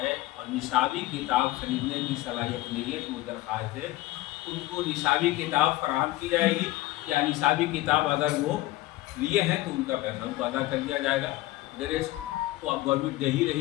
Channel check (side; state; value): right; quieter; 17.7 dB